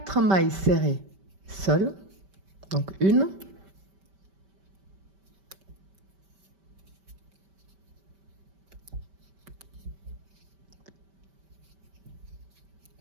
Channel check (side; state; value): left; late; 5.2 ms